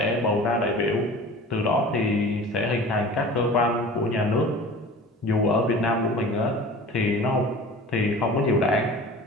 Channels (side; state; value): both; normal; correlation 0.40